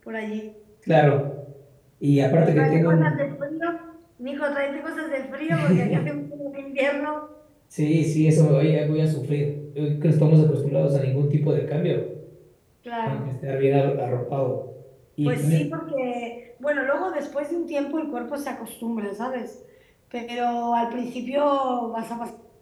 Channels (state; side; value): identical; both; correlation 1.00